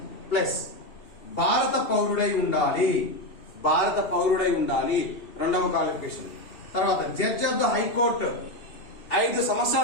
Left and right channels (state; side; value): late; right; 2.7 ms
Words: ప్లస్ భారత పౌరుడై ఉండాలి. భారత పౌరుడై ఉండాలి రెండవ క్వాలిఫికేషన్. తర్వాత జడ్జ్ ఆఫ్ ద హైకోర్టు 5